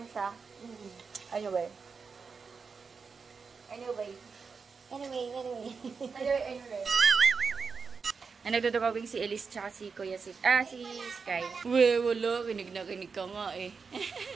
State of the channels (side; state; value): left; quieter; 5.2 dB